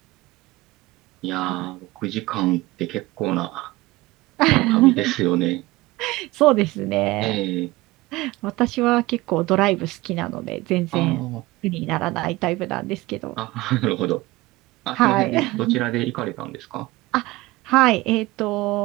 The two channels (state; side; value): quieter; left; 20.0 dB